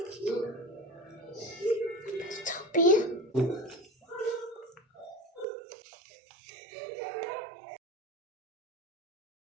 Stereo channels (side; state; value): left; drops out; at 5.5 s